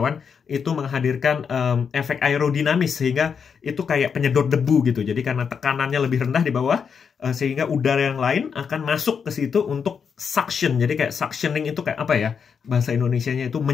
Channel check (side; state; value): right; quieter; 6.5 dB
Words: itu menghadirkan efek aerodinamis sehingga itu kayak penyedot debu gitu. Jadi karena tekanannya lebih rendah di bawah, sehingga udara yang lain akan masuk ke situ untuk suction. Jadi kayak suctioning itu kayak apa ya? Bahasa Indonesianya itu